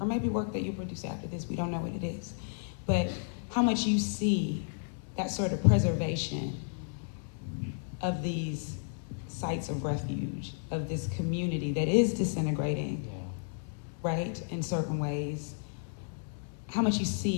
maybe work that you produce after this, we don't know what it is, but how much you see that sort of preservation of these sites of refuge, of this community that is disintegrating, right, in certain ways. How much you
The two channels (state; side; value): silent; right; 55 dB below the other